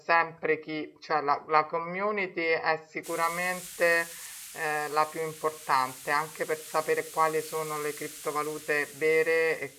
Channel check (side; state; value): both; identical; correlation 1.00